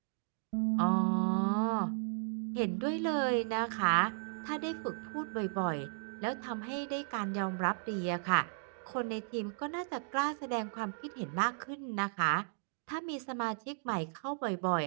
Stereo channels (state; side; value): silent; left; digital silence